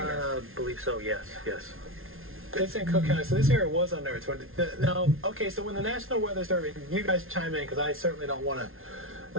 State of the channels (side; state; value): left; late; 0.60 ms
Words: I believe so. Yes. It's in Cook County, so this area was under its warning. Now, okay, so when the National Weather Service, you guys chime in because I certainly don't want